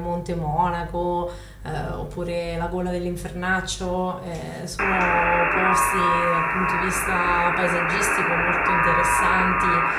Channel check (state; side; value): identical; both; correlation 1.00